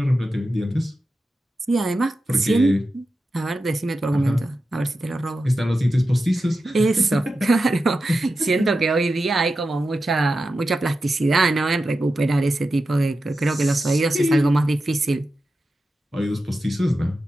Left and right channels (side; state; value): both; normal; correlation 0.91